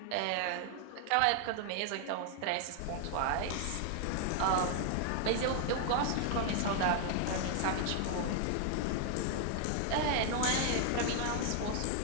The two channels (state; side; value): different; both; correlation 0.00